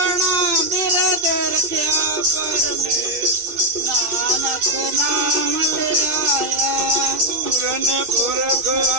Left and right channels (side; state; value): left; late; 2.6 ms